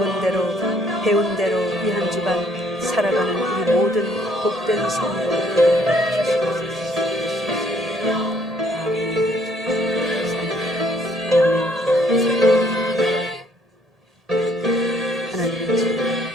대로 배운 대로 이 한 주간 살아가는 우리 모든 복된 성도들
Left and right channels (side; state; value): both; normal; correlation 0.64